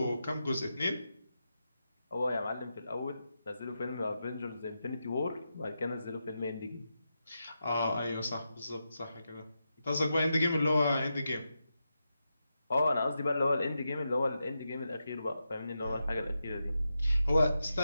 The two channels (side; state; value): both; inverted; correlation -0.88